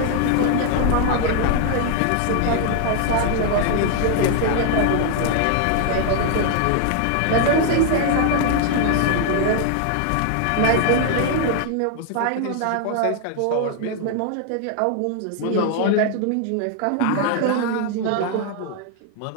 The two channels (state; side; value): different; both; correlation 0.00